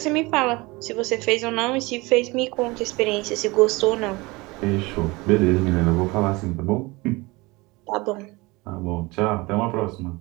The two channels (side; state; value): left; quieter; 23.5 dB